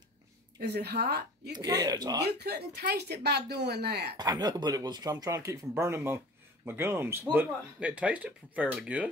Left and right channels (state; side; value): normal; both; correlation 0.41